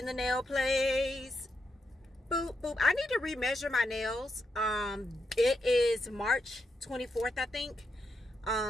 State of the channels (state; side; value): normal; both; correlation 0.83